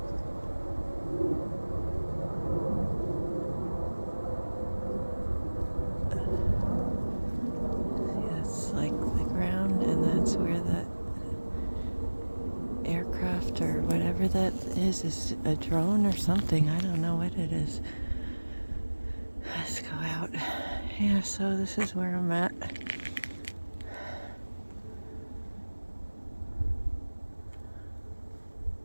That's like the ground, and that's where that aircraft or whatever that is a drone or something. I don't know what it is. Let's go out. Yeah, so this is where I'm at.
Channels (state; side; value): inverted; both; correlation -1.00